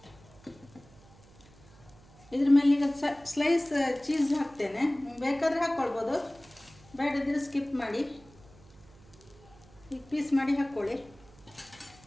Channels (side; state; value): right; noise; hum, 24 dB below the sound